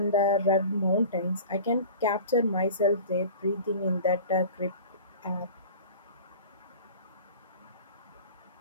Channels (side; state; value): both; inverted; correlation -0.39